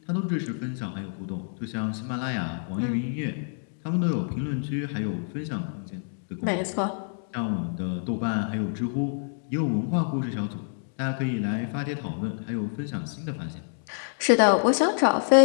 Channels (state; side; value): silent; right; digital silence